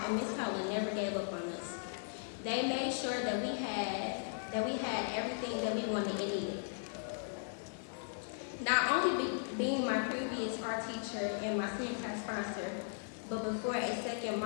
and Ms. Cullen never gave up on us. They made sure that we had everything that we wanted and needed. Not only being my previous art teacher and my senior class sponsor, but before a second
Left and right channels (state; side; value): silent; right; 53 dB below the other